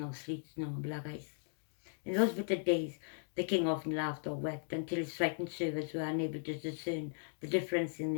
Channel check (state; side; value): silent; right; digital silence